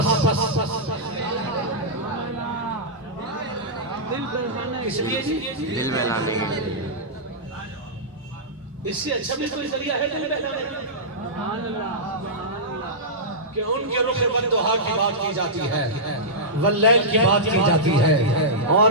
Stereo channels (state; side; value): normal; both; correlation -0.14